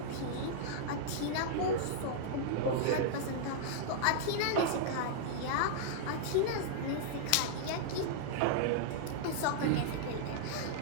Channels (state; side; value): different; both; correlation -0.01